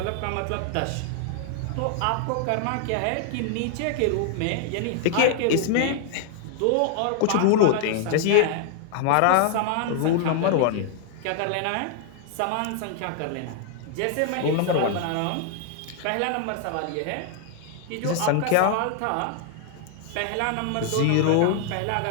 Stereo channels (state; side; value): different; both; correlation 0.00